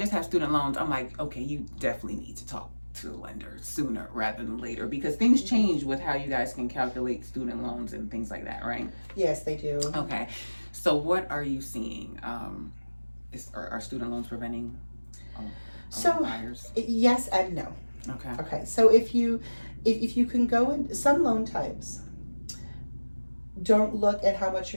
have student loans, I'm like, okay, you definitely need to talk to a lender sooner rather than later, because things change with how you guys can calculate student loans and things like that, right? Yes, they do. Okay, so what are you seeing? Are student loans preventing buyers? Yes and no. Okay, so if you can go in, some loan types don't look at how much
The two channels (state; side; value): inverted; both; correlation -1.00